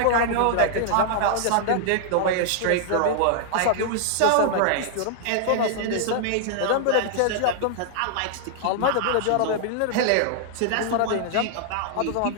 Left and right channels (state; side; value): different; both; correlation -0.01